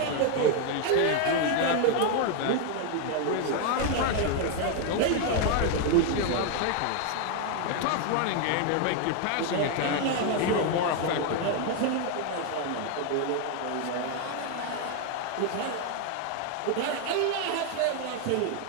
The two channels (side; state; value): both; different; correlation 0.01